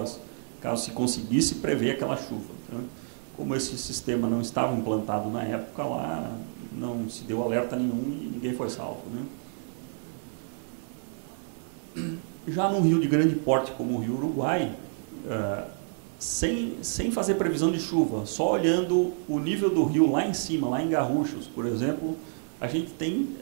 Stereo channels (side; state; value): left; silent; digital silence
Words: caso se conseguisse prever aquela chuva, né? Como esse sistema não estava implantado na época lá, não se deu alerta nenhum e ninguém foi salvo, né? Já num rio de grande porte como o Rio Uruguai, sem fazer previsão de chuva, só olhando o nível do rio lá em cima, lá em Garruchos, por exemplo, a gente tem